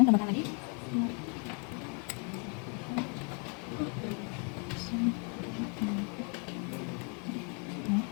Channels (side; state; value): right; quieter; 37.4 dB